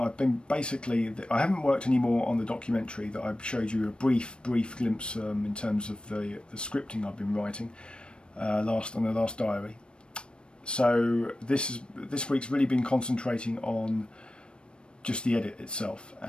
been I haven't worked anymore on the documentary that I showed you a brief glimpse in terms of the scripting I've been writing on the last diary. So this week's really been concentrating on just the edit itself,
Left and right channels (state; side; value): late; right; 0.056 ms